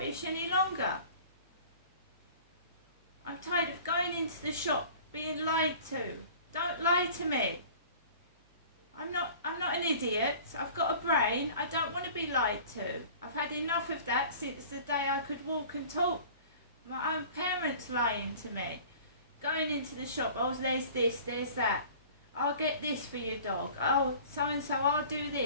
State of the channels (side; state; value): both; inverted; correlation -0.45